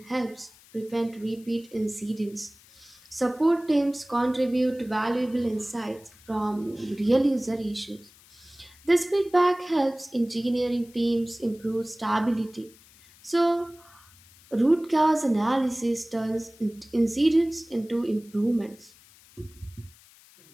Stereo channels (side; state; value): left; noise; hiss, 25 dB below the sound